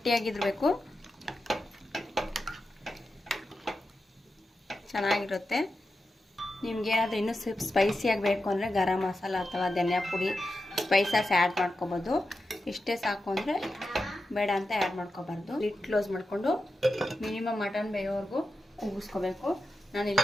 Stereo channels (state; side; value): normal; both; correlation 0.90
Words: ಚೆನ್ನಾಗಿರುತ್ತೆ. ನಿಮಗೇನಾದರೂ ಇನ್ನೂ ಸ್ಪೈಸಿಯಾಗಿ ಬೇಕು ಅಂದರೆ ಗರಂ ಮಸಾಲ ಅಥವಾ ಧನಿಯಾ ಪುಡಿ ಸ್ಪೈಸಸ್ ಆ್ಯಡ್ ಮಾಡ್ಕೊಬೋದು. ಇಷ್ಟೇ ಸಾಕು ಅಂದರೆ ಬೇಡ ಅಂತ ಆ್ಯಡ್ ಮಾಡ್ಕೋಬಾರ್ದು. ಲಿಡ್ ಕ್ಲೋಸ್ ಮಾಡಿಕೊಂಡು ಮಿನಿಮಮ್ ಮಟನ್ ಬೇಯೋವರೆಗೂ ಕೂಗಿಸ್ಕೋಬೇಕು.